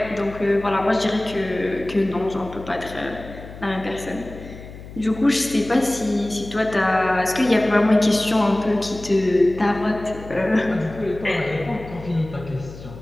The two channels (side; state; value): left; noise; hum, 15 dB below the sound